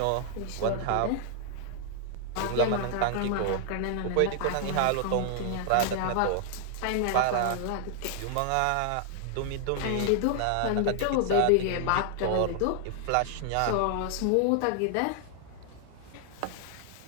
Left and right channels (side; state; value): both; different; correlation 0.00